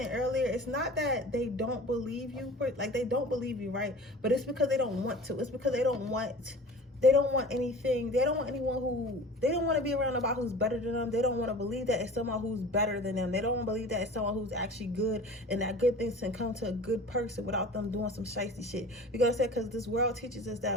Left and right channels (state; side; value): normal; both; correlation 0.40